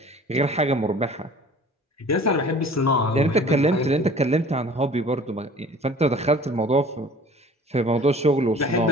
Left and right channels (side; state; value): both; normal; correlation 0.47